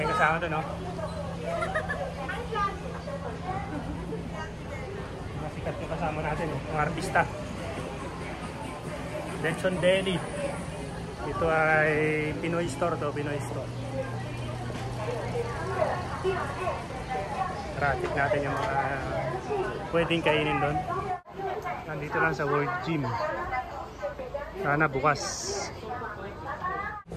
kasama doon, no? Masikat yung kasama natin, yung artista. Lechon Deli. Ito ay Pinoy store to, Pinoy store. Tara-check natin yung mga pwedeng kainin doon. Nandito lang sa World Gym. Sana bukas.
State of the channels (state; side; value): identical; both; correlation 1.00